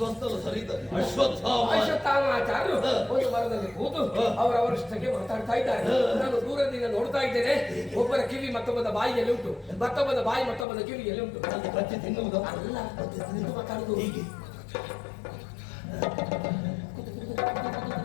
ಒಂದು ಮರದಲ್ಲಿ ಕೂತು ಅವರವರಷ್ಟಕ್ಕೆ ಮಾತಾಡ್ತಾ ಇದ್ದಾರೆ. ನಾನು ದೂರದಿಂದ ನೋಡ್ತಾ ಇದ್ದೇನೆ. ಒಬ್ಬರ ಕಿವಿ ಮತ್ತೊಬ್ಬದ ಬಾಯಿಯಲ್ಲಿ ಉಂಟು, ಮತ್ತೊಬ್ಬದ ಬಾಯಿ ಮತ್ತೊಬ್ಬದ ಕಿವಿಯಲ್ಲಿ ಉಂಟು. ಅಲ್ಲ, ಮಾತಾಡುದು ಹೀಗೆ.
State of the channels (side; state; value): right; drops out; at 10.7 s